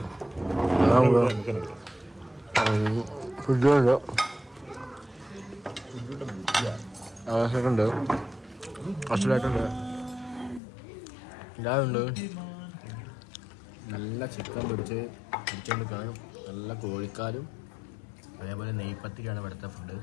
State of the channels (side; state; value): right; drops out; at 10.6 s